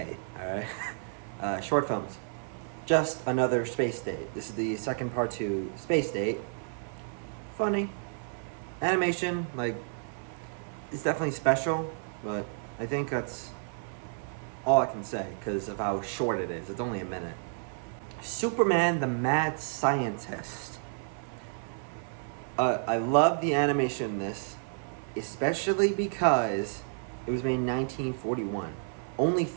alright? Short films. Just Another Space Date. This is the second part to Space Date. Funny. Animation, like, it's definitely special, but I think that's all I can say because of how short it is. It's only a minute. Superman the Mad Scientist. I love the animation in this, especially because it was made in 1941, only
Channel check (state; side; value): silent; left; 57 dB below the other